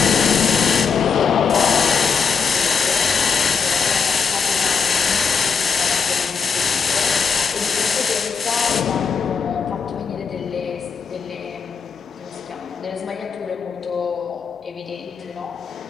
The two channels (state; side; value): quieter; right; 5.9 dB